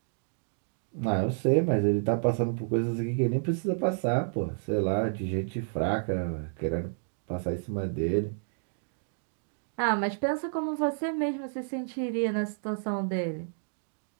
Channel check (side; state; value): left; silent; digital silence